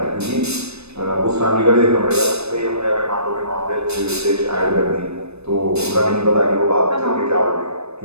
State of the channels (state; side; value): late; left; 0.80 ms